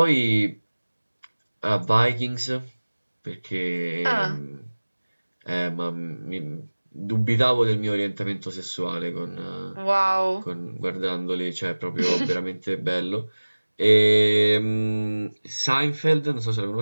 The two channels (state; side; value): inverted; both; correlation -1.00